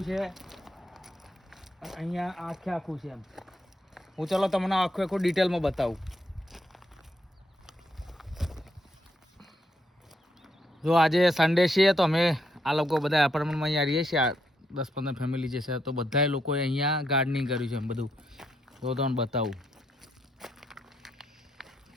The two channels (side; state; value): both; normal; correlation 0.78